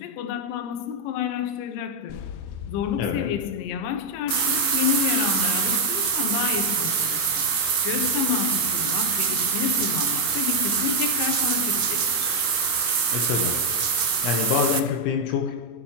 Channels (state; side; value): late; right; 24 ms